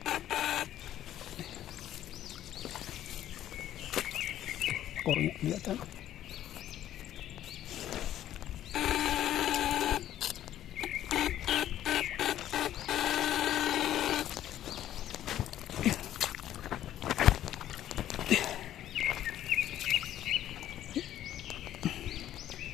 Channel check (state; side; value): quieter; right; 12.1 dB